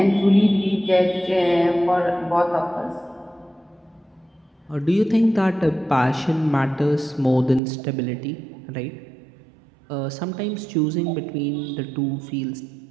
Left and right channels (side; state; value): left; drops out; at 7.6 s